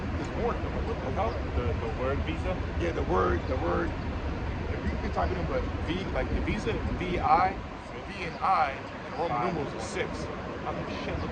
There's more than what the hell? The word Visa? Yeah, the word. If you can type it in, but V, like the Visa, V and I, and Roman numerals are 6. I I'm like, shit,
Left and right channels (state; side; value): identical; both; correlation 1.00